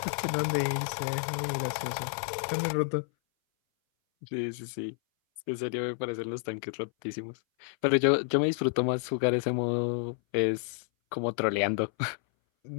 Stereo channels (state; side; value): silent; right; 58 dB below the other